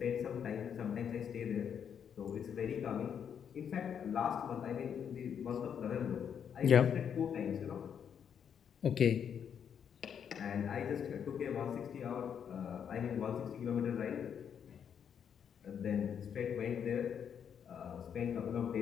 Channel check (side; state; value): right; quieter; 8.0 dB